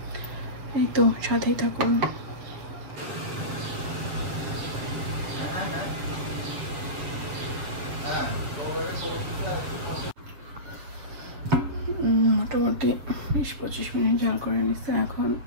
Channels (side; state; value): left; late; 7.3 ms